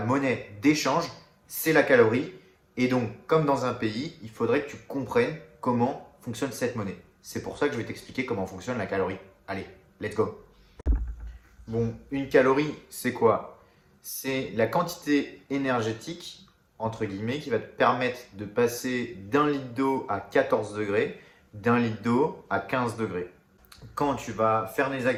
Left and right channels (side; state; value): both; identical; correlation 1.00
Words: d'échange, c'est la calorie. Et donc, comme dans un pays, il faudrait que tu comprennes comment fonctionne cette monnaie. C'est pour ça que je vais t'expliquer comment fonctionne la calorie. Allez, let's go! Bon, une calorie, c'est quoi? C'est la quantité énergétique entre guillemets, qui va te permettre de passer d'un litre d'eau à 14 degrés, d'un litre d'eau à 15 degrés. Quand tu vas faire des